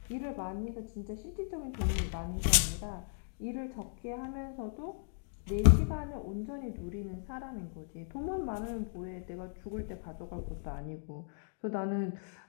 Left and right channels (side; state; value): right; silent; digital silence